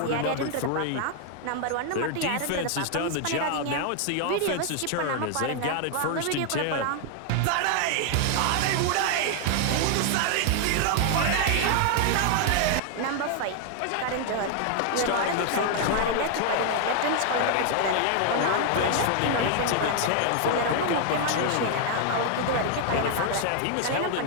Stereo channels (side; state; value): both; different; correlation 0.00